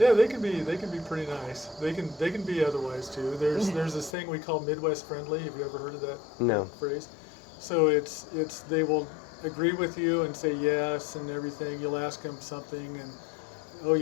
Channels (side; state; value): right; drops out; at 4.2 s